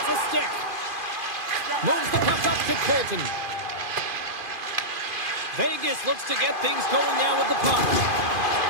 a stick. Moves the puck up to Colton. Vegas looks to get things going now with the puck.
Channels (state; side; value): late; left; 2.5 ms